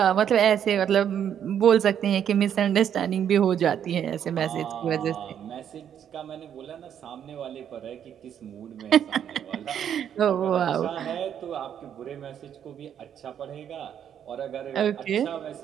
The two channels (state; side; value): quieter; left; 9.1 dB